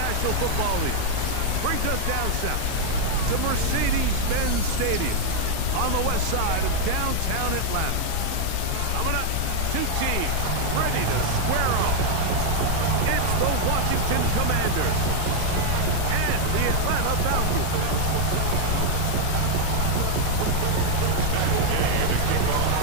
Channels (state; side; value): different; both; correlation 0.00